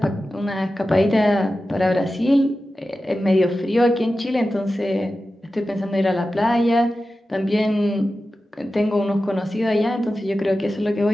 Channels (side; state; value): both; normal; correlation 0.93